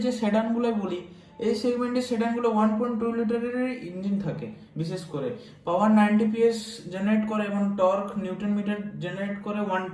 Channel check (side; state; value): both; identical; correlation 1.00